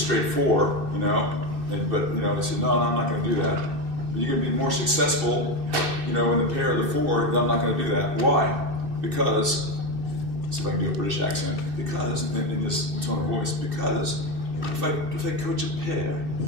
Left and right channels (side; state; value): left; late; 2.6 ms